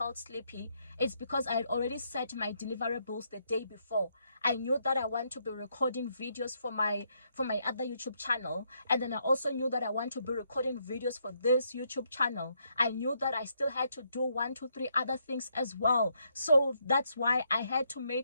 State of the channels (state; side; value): inverted; both; correlation -0.75